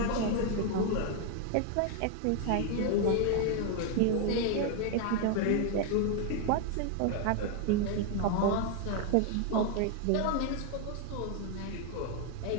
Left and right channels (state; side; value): different; both; correlation 0.01